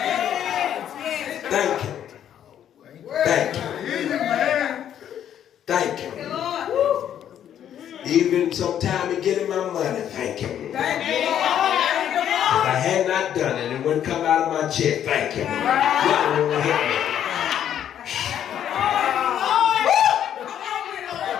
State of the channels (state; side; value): quieter; right; 10.0 dB